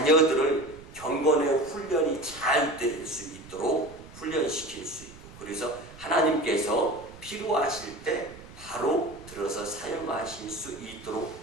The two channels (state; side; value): noise; right; rumble, 19 dB below the sound